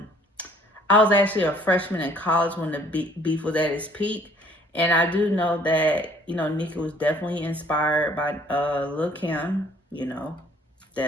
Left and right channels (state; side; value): normal; both; correlation 0.58